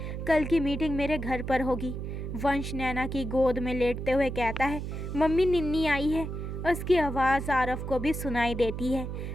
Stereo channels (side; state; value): right; noise; hum, 5 dB below the sound